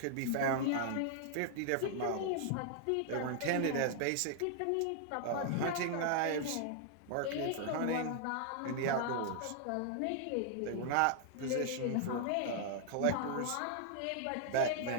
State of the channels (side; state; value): both; different; correlation 0.00